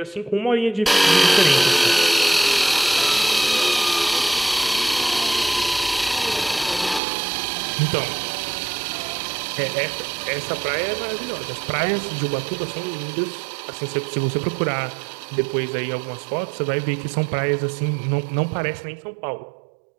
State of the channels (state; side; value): drops out; left; at 7.0 s